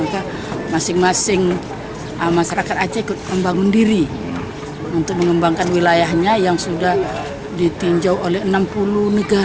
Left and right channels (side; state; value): both; identical; correlation 1.00